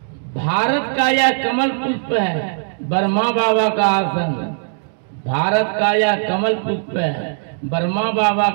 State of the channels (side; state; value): left; silent; digital silence